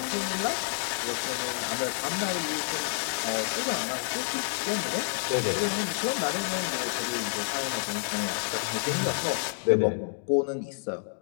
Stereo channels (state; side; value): silent; right; digital silence